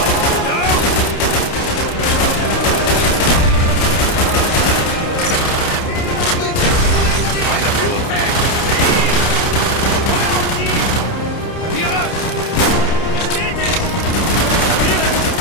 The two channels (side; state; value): right; late; 30 ms